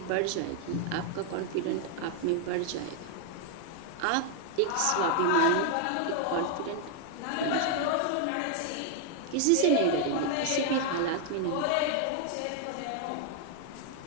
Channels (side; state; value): both; different; correlation 0.00